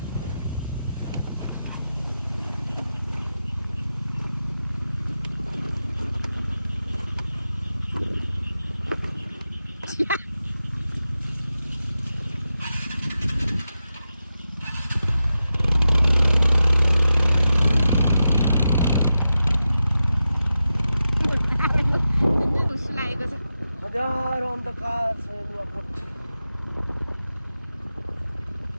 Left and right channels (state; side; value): inverted; both; correlation -0.90